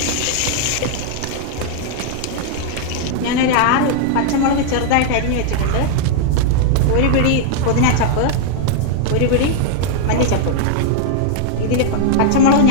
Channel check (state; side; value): different; both; correlation -0.01